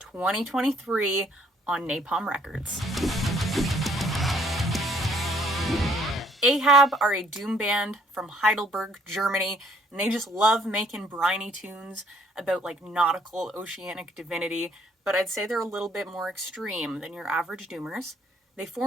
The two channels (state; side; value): normal; both; correlation 0.63